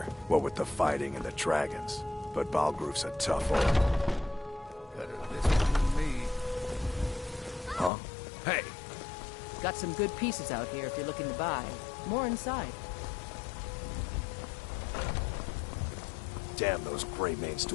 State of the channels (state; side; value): drops out; right; at 7.9 s